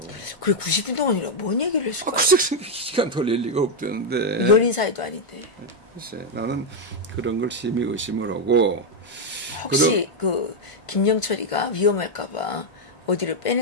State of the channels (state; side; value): normal; both; correlation 0.02